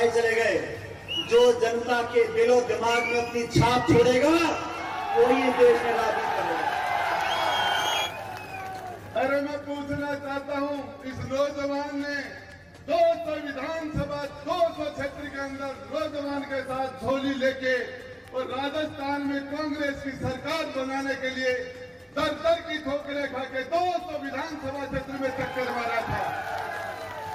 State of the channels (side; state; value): both; identical; correlation 1.00